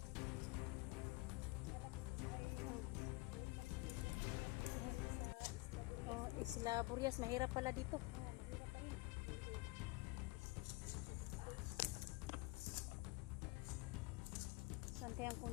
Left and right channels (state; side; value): quieter; right; 23.2 dB